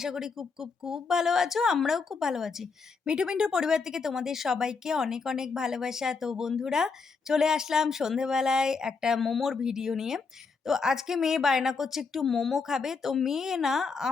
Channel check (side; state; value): right; quieter; 4.9 dB